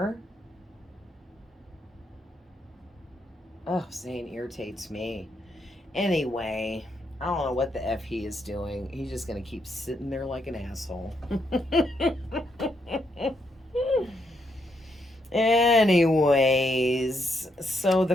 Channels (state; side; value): normal; both; correlation 0.78